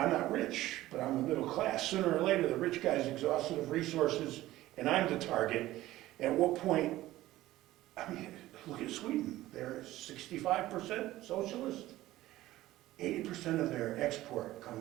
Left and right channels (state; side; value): quieter; left; 16.0 dB